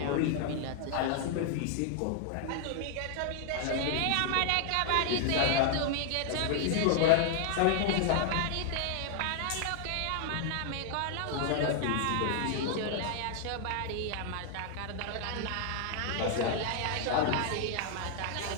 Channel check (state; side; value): different; both; correlation 0.00